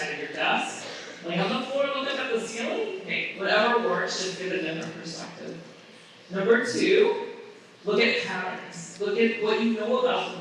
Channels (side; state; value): both; identical; correlation 1.00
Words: of your desk. Lay on the floor, look up at the ceiling. Okay, whatever works, just give a different perspective. Number two, look at patterns. Look at what you know about the